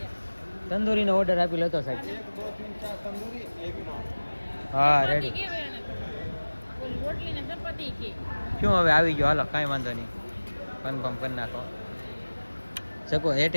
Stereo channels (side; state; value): both; inverted; correlation -1.00